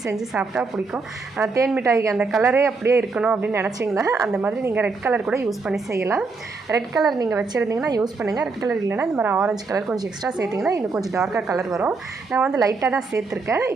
செஞ்சு சாப்பிட்டா பிடிக்கும். தேன் மிட்டாய்க்கு அந்த கலரே அப்படியே இருக்கணும் அப்படின்னு நினச்சிங்கன்னா அந்த மாதிரி நீங்கள் ரெட் கலர் கூட யூஸ் பண்ணி செய்யலாம். ரெட் கலர் நீங்கள் வச்சுருந்தீங்கன்னா யூஸ் பண்ணுங்கள். ரெட் கலர் இல்லைன்னா இந்த மாதிரி ஆரஞ்சு கலர் கொஞ்சம் எக்ஸ்ட்ரா சேர்த்திங்கன்னா இன்னும் கொஞ்சம் டார்க்காக கலர் வரும். நான் வந்து லைட்டாக தான் சேர்த்துருக்கேன்.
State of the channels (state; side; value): quieter; left; 4.1 dB